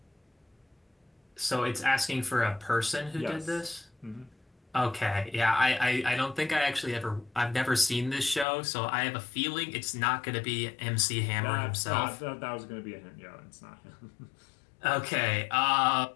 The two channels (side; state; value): right; drops out; at 8.5 s